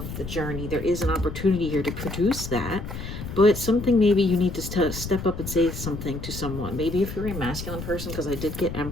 of the journey. There is an opportunity here to produce that. But something maybe you need to step up and say something to someone. Maybe if you're a masculine person, because I did get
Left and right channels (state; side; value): noise; left; rumble, 8 dB below the sound